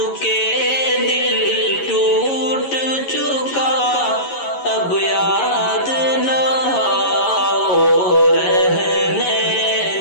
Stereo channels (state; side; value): late; right; 11 ms